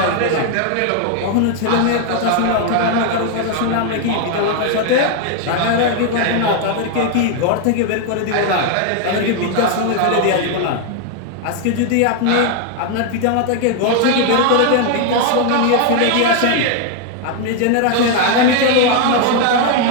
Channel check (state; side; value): different; both; correlation 0.01